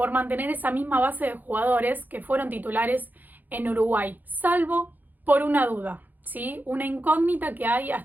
mantener esa misma base de jugadores que fueron titulares en Uruguay, salvo por una duda, ¿sí? Una incógnita que hay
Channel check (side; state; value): left; late; 0.085 ms